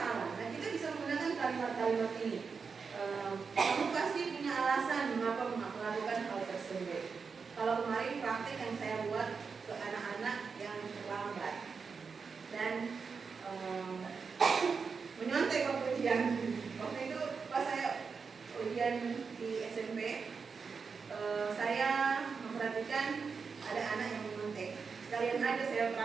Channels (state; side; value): quieter; left; 5.3 dB